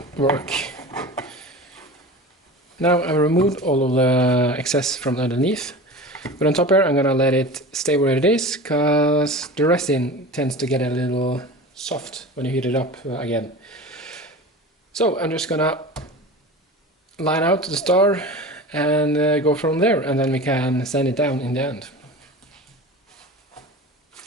work. Now I've removed all of the excess from underneath, but on top here I'm gonna let it stay where it is, because the resin tends to get a little soft when you heat it up again. So I'm just gonna line out the star and go from there, and then we can sand it down in the end.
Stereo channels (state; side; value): normal; both; correlation 0.33